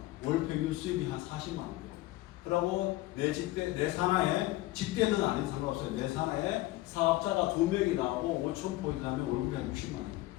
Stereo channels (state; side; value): quieter; right; 17.8 dB